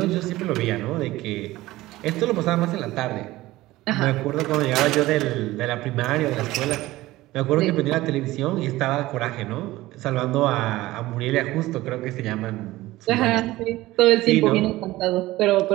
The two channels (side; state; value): left; quieter; 17.6 dB